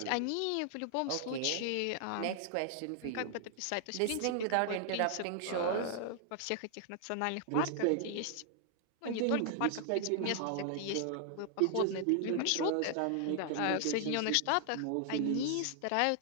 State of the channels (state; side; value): different; both; correlation 0.00